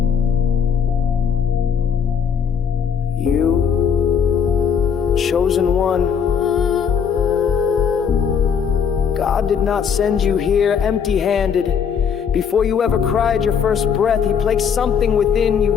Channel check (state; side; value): quieter; right; 7.2 dB